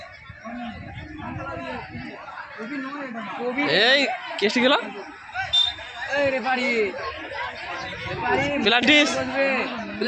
এই কেসটি গেল প্লান্টিস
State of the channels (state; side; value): identical; both; correlation 1.00